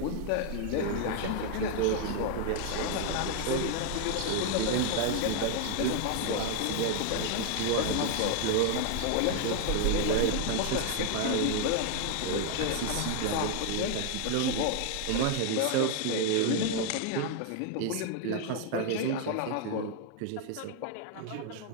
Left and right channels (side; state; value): both; different; correlation 0.00